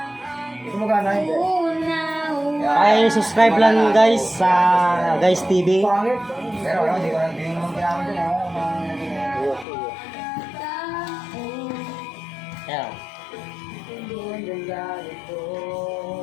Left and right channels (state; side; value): drops out; right; at 9.7 s